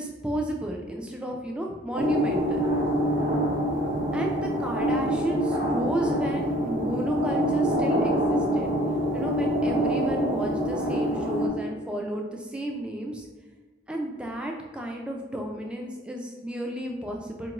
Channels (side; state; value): both; normal; correlation 0.55